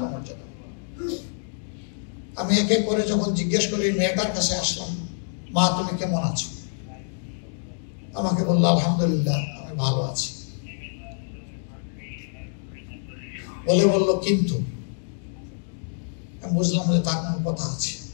আমি একে করে যখন জিজ্ঞেস করি, মেয়েটার কাছে আসলাম, মা তুমি কেমন আছো? আমাকে বললো আলহামদুলিল্লাহ আমি ভালো আছি। বললো কিন্তু, আমি বুঝলাম যে তার কোনো কথা আছে,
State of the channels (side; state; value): right; silent; digital silence